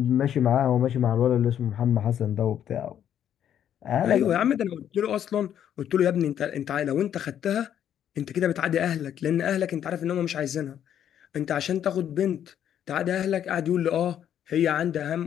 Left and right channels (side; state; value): right; quieter; 9.9 dB